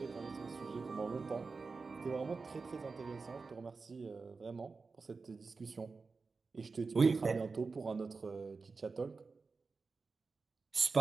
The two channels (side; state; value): left; quieter; 4.4 dB